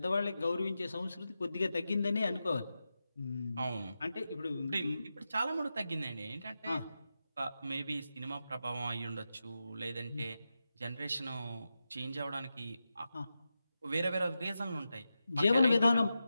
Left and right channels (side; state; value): both; inverted; correlation -0.90